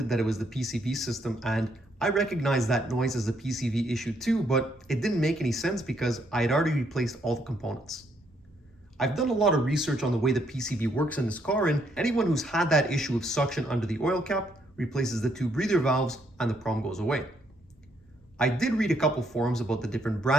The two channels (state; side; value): normal; both; correlation 0.72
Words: that it was the PCV system, and I recognized that noise as a PCV issue too, but it didn't make any sense because I had already replaced all the components. I've done a lot of research on the way the PCV works in this car, and anyone who's had that issue of suction under the oil cap replaces the two breather valves and the problem goes away. I did read a couple forums about the different